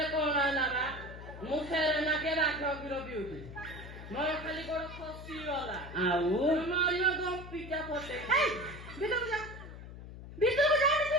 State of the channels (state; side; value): noise; left; hum, 13 dB below the sound